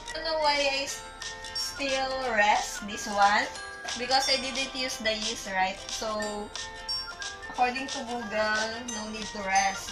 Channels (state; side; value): identical; both; correlation 1.00